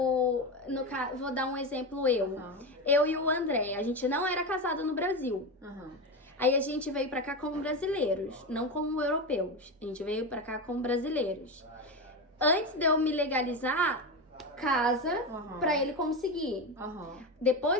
vou dar um exemplo eu e o André, a gente não era casado no Brasil. Aí a gente veio pra cá como brasileiros, não como europeus. A gente veio pra cá como brasileiros. Antes de eu me legalizar, casa pra ele conseguir.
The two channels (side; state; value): both; normal; correlation 0.18